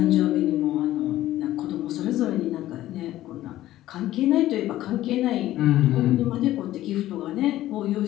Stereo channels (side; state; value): right; quieter; 14.5 dB